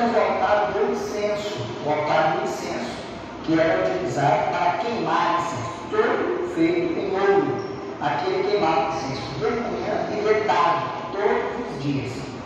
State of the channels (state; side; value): identical; both; correlation 1.00